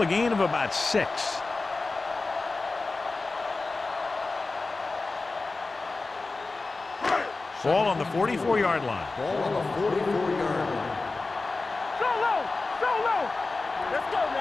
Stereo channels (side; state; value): right; quieter; 3.6 dB